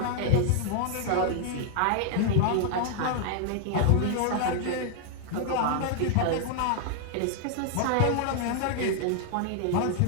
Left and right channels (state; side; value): different; both; correlation 0.00